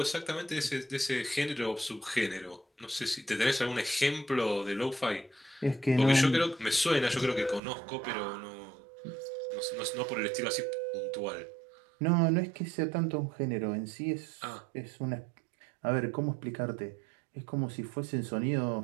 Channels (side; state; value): left; drops out; at 7.6 s